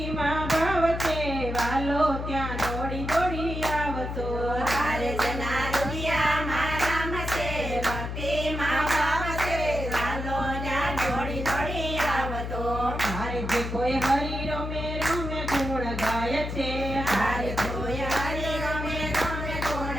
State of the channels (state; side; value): noise; left; hum, 5 dB below the sound